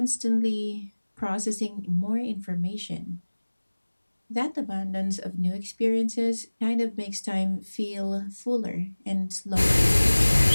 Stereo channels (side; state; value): both; inverted; correlation -1.00